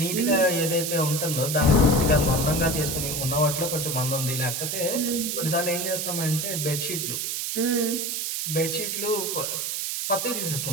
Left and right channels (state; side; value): noise; right; hiss, 2 dB below the sound